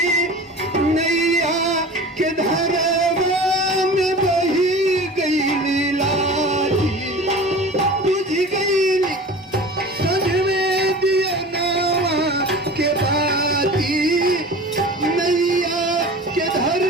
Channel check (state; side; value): normal; both; correlation 0.37